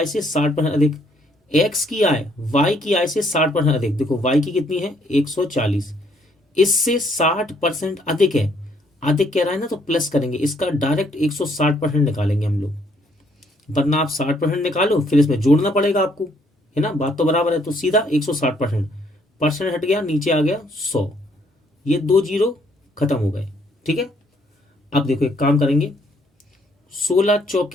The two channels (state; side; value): normal; both; correlation 0.67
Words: से 60% अधिक, एक्स की आय वाई की आय से 60% अधिक, देखो वाई की कितनी है 140, इससे 60% अधिक है, अधिक कह रहा है ना तो प्लस करेंगे, इसका डायरेक्ट 160% निकालेंगे हम लोग, वरना आप 60% निकालो फिर इसमें जोड़ना पड़ेगा आपको, है ना, बात तो बराबर है, तो सीधा 160%, परसेंट हट गया नीचे आ गया 100, ये 2 जीरो खत्म हो गए। ठीक है। अब देखो एक काम करेंगे, 16